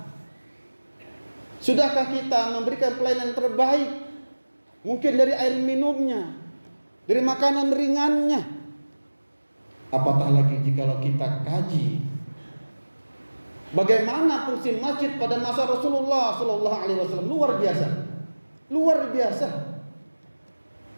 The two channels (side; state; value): both; inverted; correlation -1.00